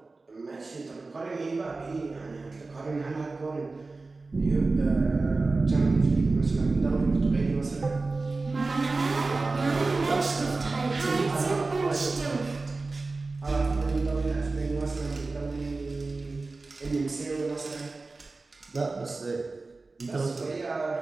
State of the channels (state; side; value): quieter; left; 3.6 dB